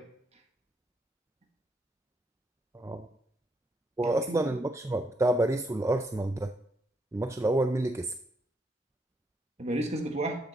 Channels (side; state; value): both; normal; correlation 0.75